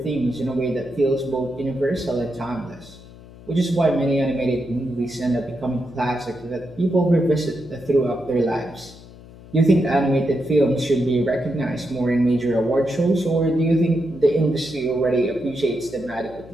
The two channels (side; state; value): left; noise; hum, 19 dB below the sound